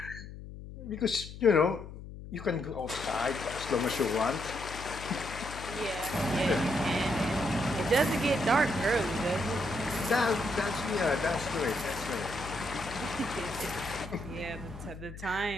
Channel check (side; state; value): left; noise; hum, 12 dB below the sound